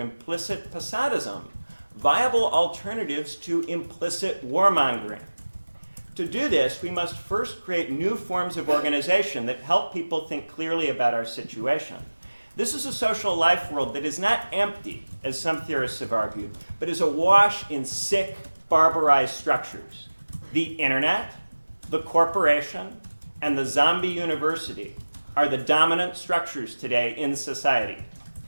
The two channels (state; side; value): inverted; both; correlation -1.00